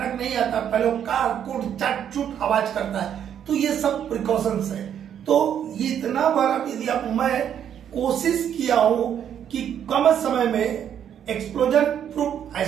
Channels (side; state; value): left; quieter; 9.2 dB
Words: नहीं आता, पहले वो कार कुट चट चुट आवाज करता है। तो ये सब प्रिकॉशंस है। तो ये इतना बार यदि आप, मैं कोशिश किया हूं कि कम समय में एक्सप्लोजन प्रूफ